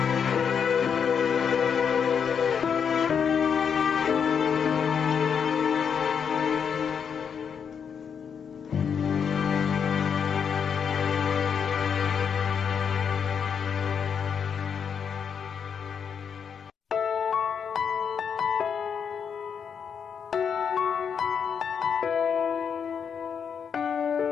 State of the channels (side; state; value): right; quieter; 7.1 dB